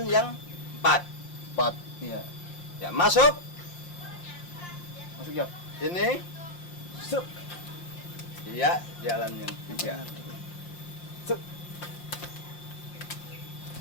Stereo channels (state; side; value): late; right; 5.7 ms